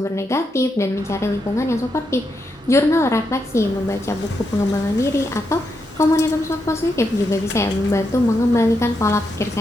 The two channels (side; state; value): both; normal; correlation 0.82